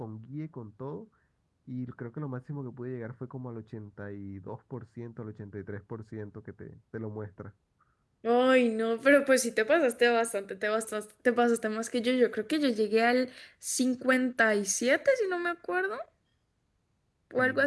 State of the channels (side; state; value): both; identical; correlation 1.00